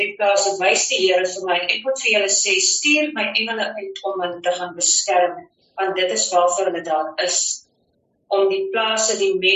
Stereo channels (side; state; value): both; identical; correlation 1.00